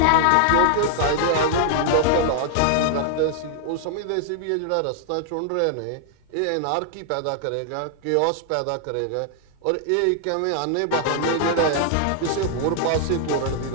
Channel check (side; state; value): both; different; correlation -0.01